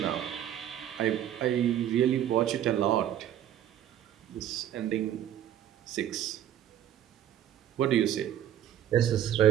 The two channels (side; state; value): left; quieter; 11.1 dB